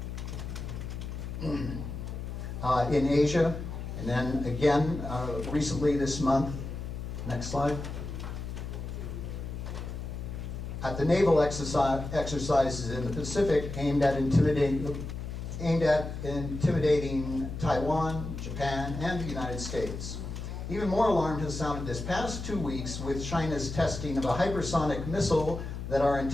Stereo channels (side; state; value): left; noise; hum, 7 dB below the sound